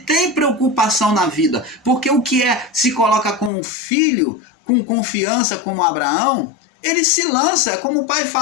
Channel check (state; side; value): drops out; right; at 3.5 s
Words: preocupação na vida. Porque o que se coloca como filho, com confiança como Abraão, ele se lança, é como o pai